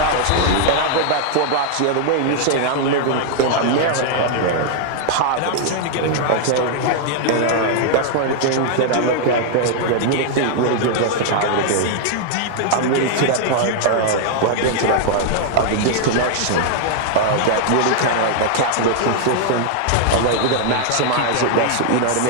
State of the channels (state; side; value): different; both; correlation -0.01